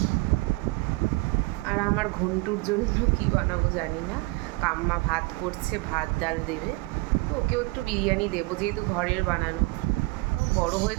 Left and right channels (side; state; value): left; quieter; 24.3 dB